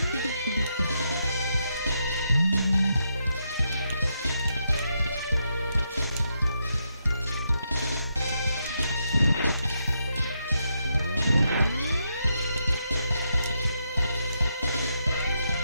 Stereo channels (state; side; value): inverted; both; correlation -0.81